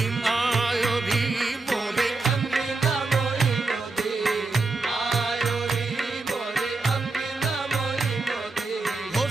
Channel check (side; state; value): left; quieter; 3.6 dB